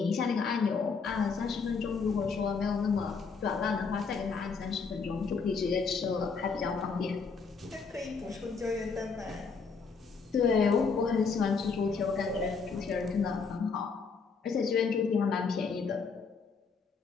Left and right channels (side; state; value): right; quieter; 5.1 dB